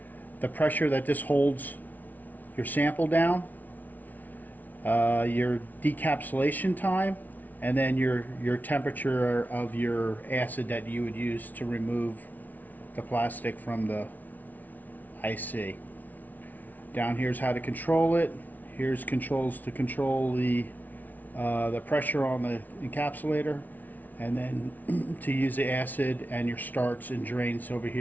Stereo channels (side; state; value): right; late; 0.079 ms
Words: the pressure that this holds your sample down, your decapsulation time, and then your temperature of your acid that you would use to remove the plastic from the IC. Down here's how to control it. Here's controls to control the pressure on the encapsulator, and then to use the acid and your starts and drains over